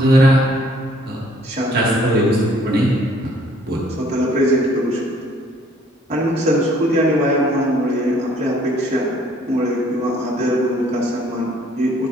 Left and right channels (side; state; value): both; normal; correlation 0.60